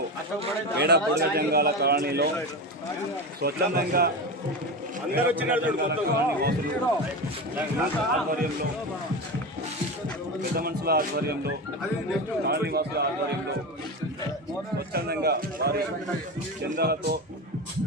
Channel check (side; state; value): both; normal; correlation 0.22